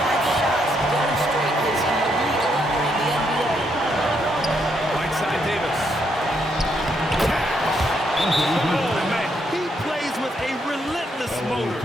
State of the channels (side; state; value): both; normal; correlation 0.76